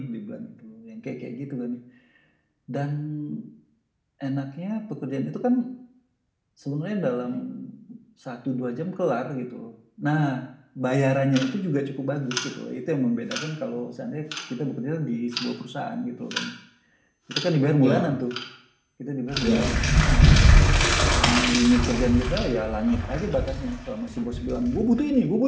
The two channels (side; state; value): both; identical; correlation 1.00